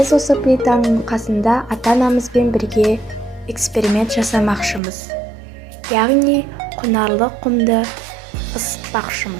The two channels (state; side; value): drops out; left; at 4.8 s